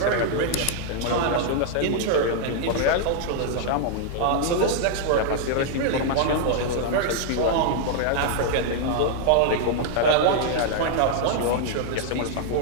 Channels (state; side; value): different; both; correlation 0.00